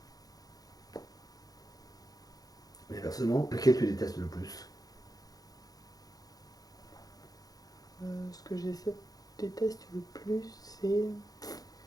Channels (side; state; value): right; late; 0.18 ms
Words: Et personnellement, lequel tu détestes le plus? Ce que déteste le plus, c'est